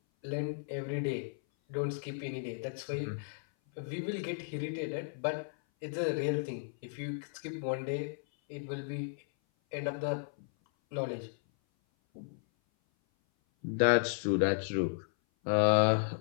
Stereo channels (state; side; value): silent; right; 55 dB below the other